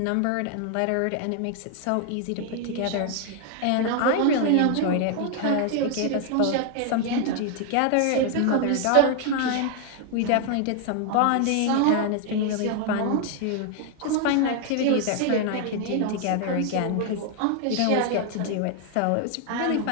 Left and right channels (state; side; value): different; both; correlation 0.00